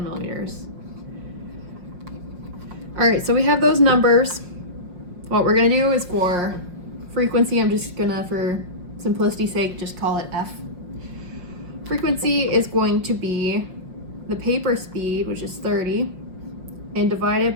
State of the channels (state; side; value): late; left; 5.6 ms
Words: millimeters. All right, so we have those numbers. What we're gonna do is for frequency, I'm just gonna, for simplicity's sake, just call it F. Frequency is going to be the paper speed, which is 30, and